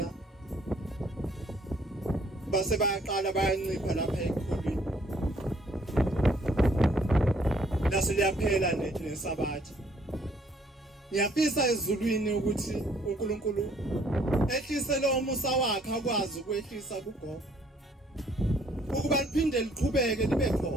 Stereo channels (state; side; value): normal; both; correlation 0.63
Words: base bayaqala bayancipha lapha ekhulwini. Lase liyaphela nesabatha. Ngiyafisa ezulwini ukuthi uNkulunkulu ehlise lo musa wakhe akwazi ukwehlisa kugogo. Ukuba liphinde liqhubeke libe